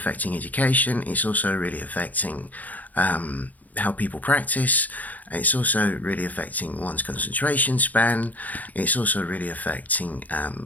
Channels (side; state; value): right; late; 0.079 ms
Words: education. It's also really affecting how people practice. It's also really affecting one's concentration span. It's also really affecting